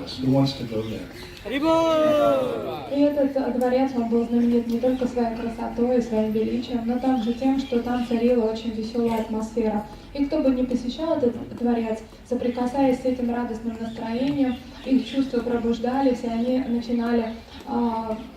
Who wants to go there? И этот дворец, он был знаменит не только своей красотой и своим величием, но также тем, что там царила очень веселая атмосфера. И кто бы ни посещал этот дворец, соприкасаясь с этим радостным настроением, их чувства пробуждались, и они начинали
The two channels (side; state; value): both; identical; correlation 1.00